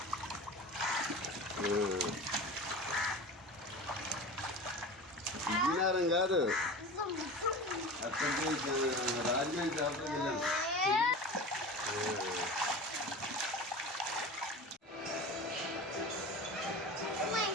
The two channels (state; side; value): normal; both; correlation 0.33